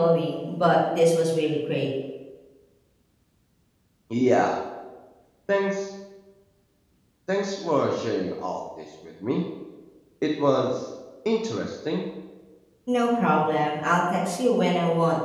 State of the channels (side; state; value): both; identical; correlation 1.00